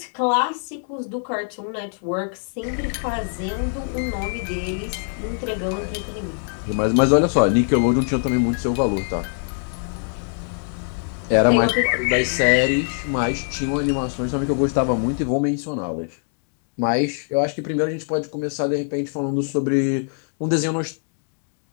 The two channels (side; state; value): right; silent; 63 dB below the other